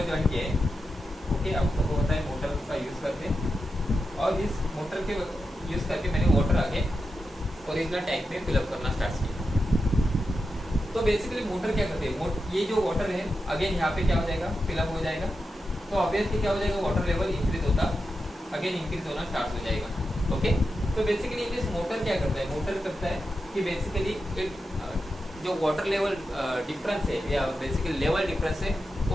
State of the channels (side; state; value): both; normal; correlation 0.89